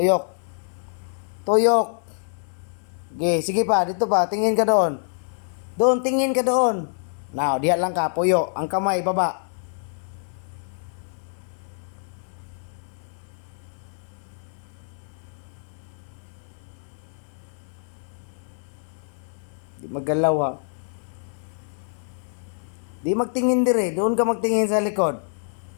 Tuyok. Okay, sige pa, dito pa. Tingin ka doon. Doon, tingin ka doon. Now, diyan lang ka, puyo. Ang kamay, baba. Maggalaw ha. Di magtingin dire, doon ka magtingin sa likod.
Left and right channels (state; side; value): silent; right; digital silence